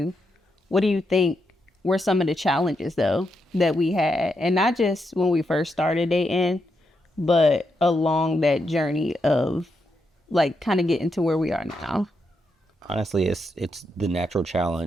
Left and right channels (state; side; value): normal; both; correlation 0.82